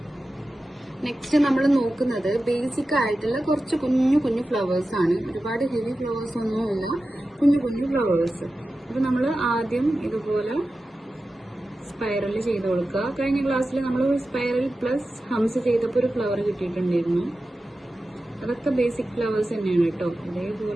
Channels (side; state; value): both; normal; correlation 0.93